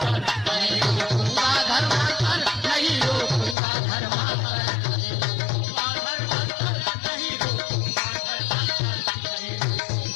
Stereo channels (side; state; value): right; drops out; at 3.6 s